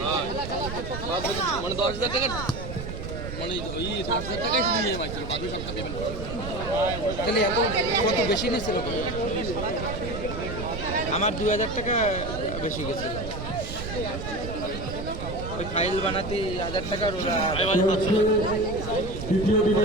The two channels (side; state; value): right; noise; rumble, 7 dB below the sound